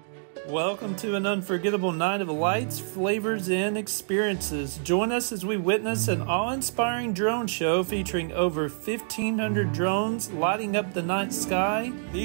Welcome to an unforgettable night of lights, flavors, and experiences. Join us as we witness an awe-inspiring drone show featuring over 1,500 drones lighting up the night sky.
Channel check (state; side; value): silent; left; digital silence